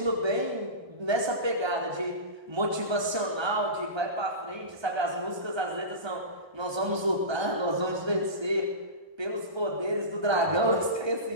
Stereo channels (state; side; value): late; left; 1.3 ms